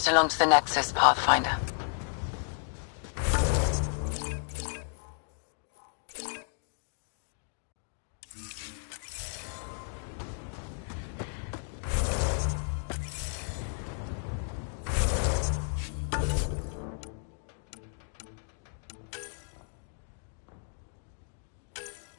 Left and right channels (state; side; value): silent; right; digital silence